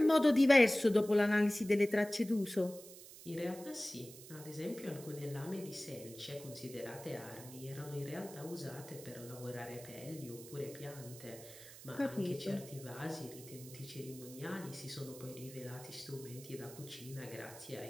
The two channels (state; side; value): noise; right; hiss, 16 dB below the sound